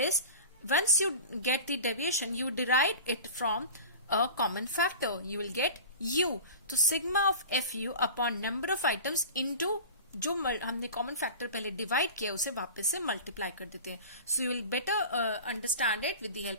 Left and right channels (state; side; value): inverted; both; correlation -0.35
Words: once you get the deviation you derive it from a common factor, you will get U. तो sigma of F U upon number of items into जो हमने common factor पहले divide किया उसे वापस से multiply कर देते हैं. So you will better understand it with the